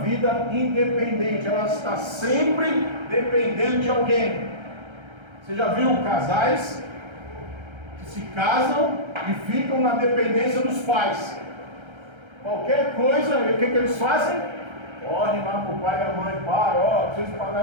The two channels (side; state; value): left; late; 1.3 ms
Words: vida independente. Ela está sempre dependendo de alguém. Você já viu casais que se casam e ficam na dependência dos pais? Qualquer coisa, o que eles fazem? Correm lá para o pai e a mãe: pai, preciso pagar